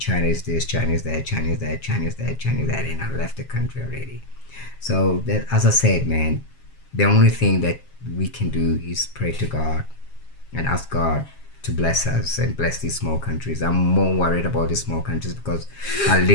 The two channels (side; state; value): right; late; 7.4 ms